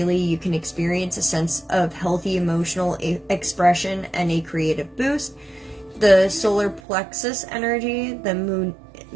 you can experience a sense of healthy emotional expression and a creative boost. The solar plexus energy, the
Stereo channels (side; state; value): left; drops out; at 6.8 s